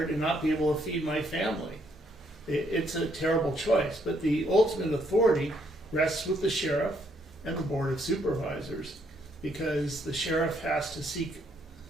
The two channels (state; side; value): normal; both; correlation 0.71